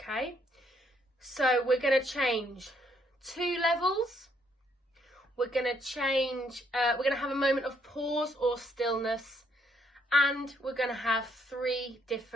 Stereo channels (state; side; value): normal; both; correlation 0.70